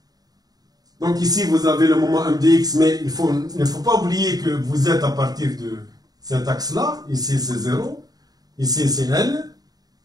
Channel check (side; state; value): left; late; 0.18 ms